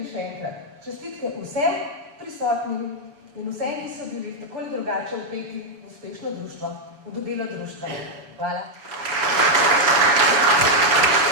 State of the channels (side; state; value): left; late; 6.9 ms